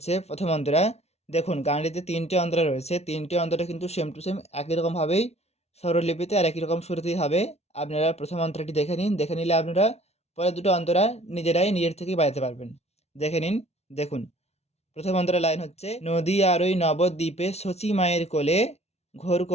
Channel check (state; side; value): late; right; 0.31 ms